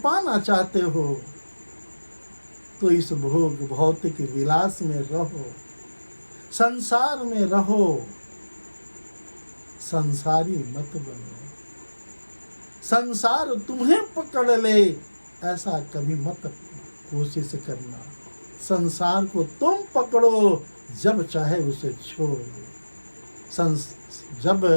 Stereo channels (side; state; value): both; inverted; correlation -1.00